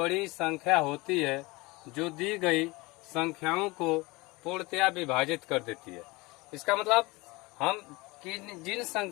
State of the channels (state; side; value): quieter; right; 23.6 dB